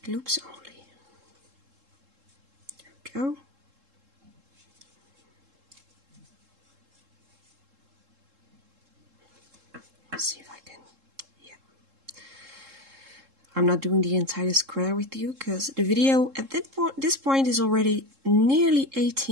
loops only. There we go. Let's see if I can, yeah. I'm not doing the entire square with you because the video at this point is already nearly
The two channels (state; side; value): late; left; 3.7 ms